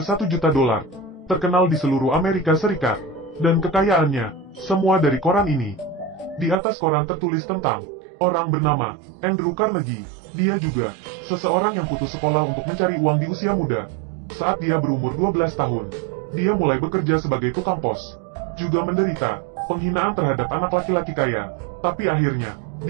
1 juta dolar. Terkenal di seluruh Amerika Serikat. Dan kekayaannya, semua dari koran ini. Di atas koran tertulis tentang orang bernama Andrew Carnegie. Dia juga seseorang yang putus sekolah untuk mencari uang di usia muda. Saat dia berumur 12 tahun, dia mulai bekerja sebagai tukang pos. Juga menderita penghinaan terhadap anak laki-laki kaya. Tapi akhirnya,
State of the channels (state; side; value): drops out; left; at 6.6 s